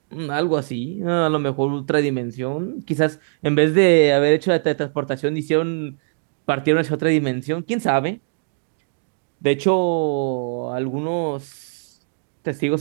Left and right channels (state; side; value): silent; left; digital silence